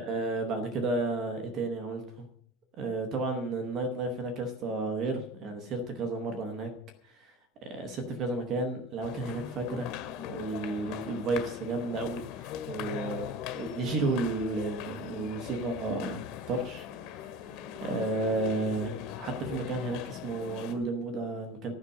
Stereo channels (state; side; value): normal; both; correlation 0.37